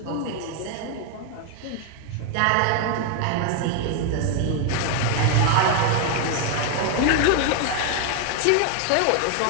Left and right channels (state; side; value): different; both; correlation 0.01